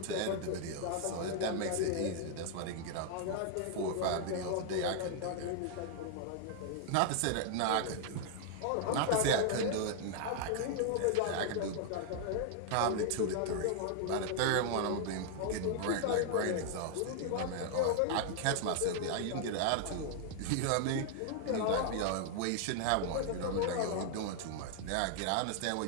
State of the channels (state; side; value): different; both; correlation 0.00